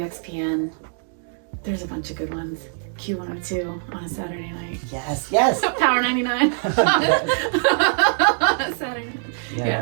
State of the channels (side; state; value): left; silent; 64 dB below the other